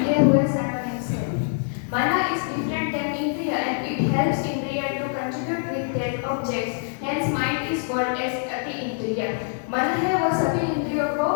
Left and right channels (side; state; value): right; silent; digital silence